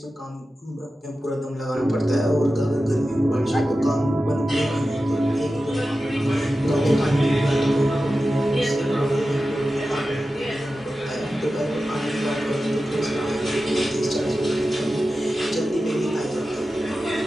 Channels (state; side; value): normal; both; correlation 0.93